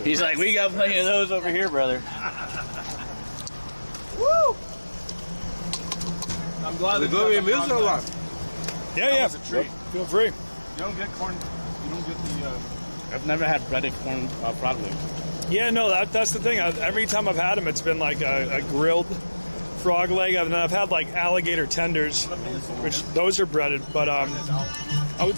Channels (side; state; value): both; inverted; correlation -1.00